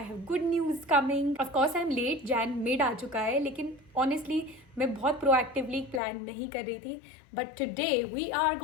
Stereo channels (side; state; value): right; drops out; at 6.0 s